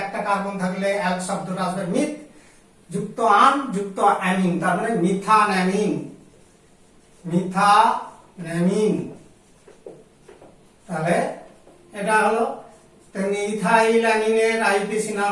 একটা কার্বন থাকলে অ্যাল শব্দটা আসবে মিথ যুক্ত আন যুক্ত অ্যামিন, তার মানে মিথানঅ্যামিন, মিথানঅ্যামিন। তাহলে এটা হলো। তেমনি ইথাইল অ্যামিনের আইইউপিএসি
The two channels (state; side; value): identical; both; correlation 1.00